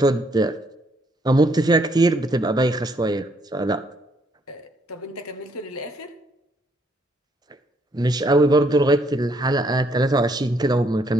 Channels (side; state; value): both; normal; correlation 0.69